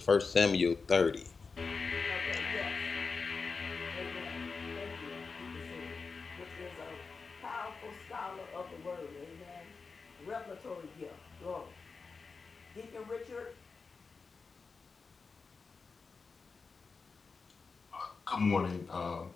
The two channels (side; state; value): right; quieter; 4.7 dB